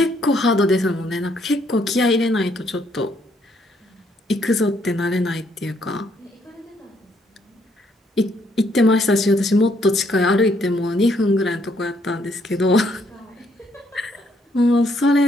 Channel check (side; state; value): both; normal; correlation 0.70